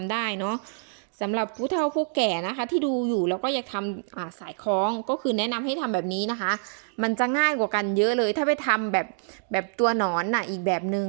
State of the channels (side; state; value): left; silent; digital silence